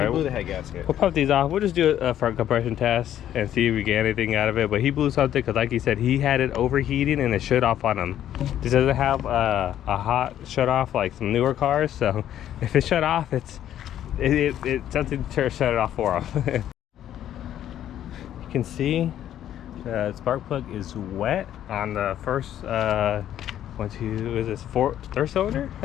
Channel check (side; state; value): right; quieter; 11.2 dB